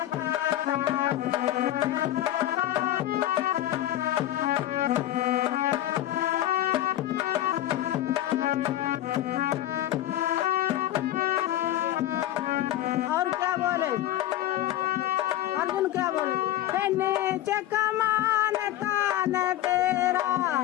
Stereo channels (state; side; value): quieter; right; 13.5 dB